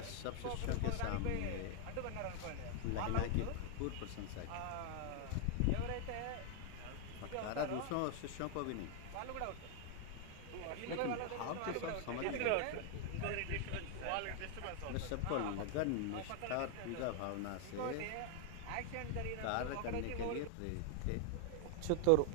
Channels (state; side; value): different; both; correlation 0.00